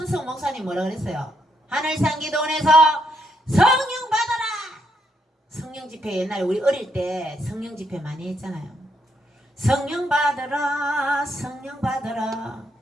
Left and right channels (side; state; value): both; normal; correlation 0.77